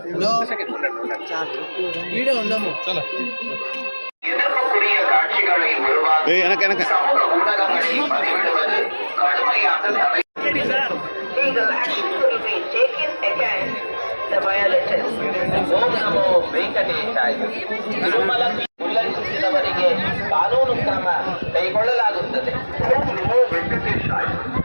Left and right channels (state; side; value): inverted; both; correlation -1.00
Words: ಕಾನೂನು ಕ್ರಮ ಕೈಗೊಳ್ಳಲಾಗುತ್ತದೆ.